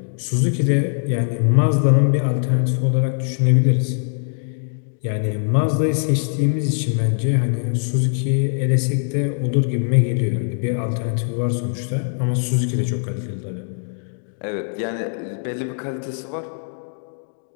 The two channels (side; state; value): right; silent; 65 dB below the other